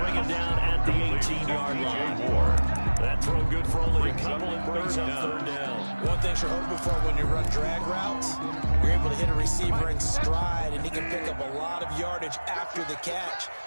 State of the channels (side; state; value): both; inverted; correlation -1.00